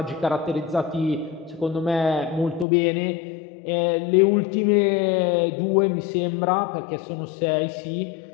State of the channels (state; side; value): drops out; right; at 2.7 s